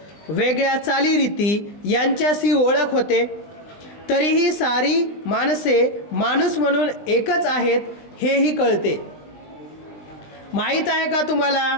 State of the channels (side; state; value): right; late; 20 ms